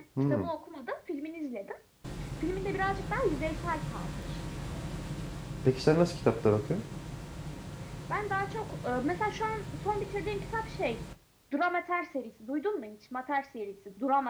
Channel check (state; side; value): identical; both; correlation 1.00